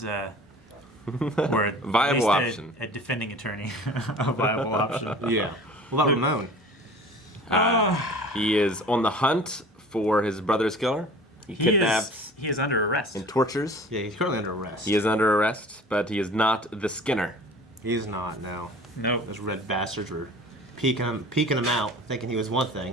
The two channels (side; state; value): both; normal; correlation 0.44